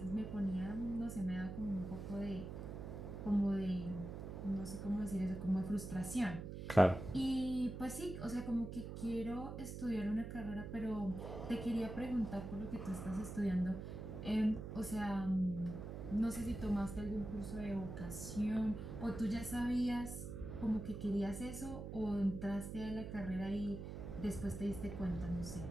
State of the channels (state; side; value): noise; right; hum, 7 dB below the sound